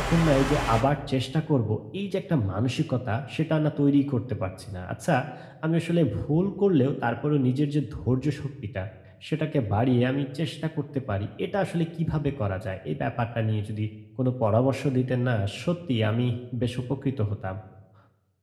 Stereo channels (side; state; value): both; identical; correlation 1.00